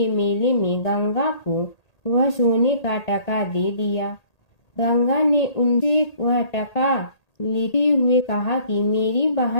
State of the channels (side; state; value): right; late; 1.8 ms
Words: मेले में गंगा को वह सोने का टका दे दिया। गंगा ने उनसे वह टका लेते हुए कहा कि मेरी